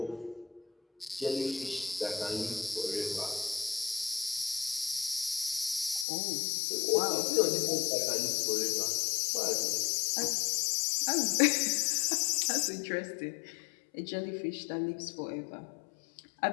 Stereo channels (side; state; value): right; drops out; at 6.1 s